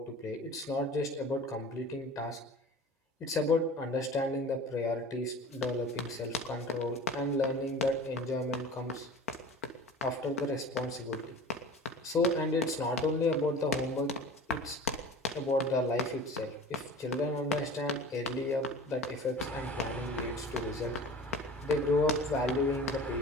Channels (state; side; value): normal; both; correlation 0.39